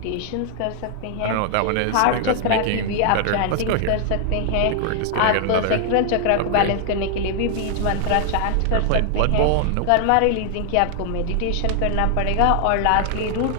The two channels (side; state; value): both; different; correlation 0.00